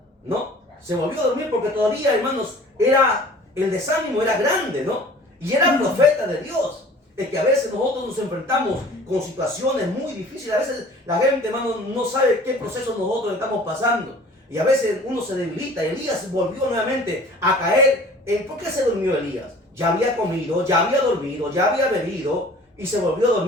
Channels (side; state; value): both; normal; correlation 0.47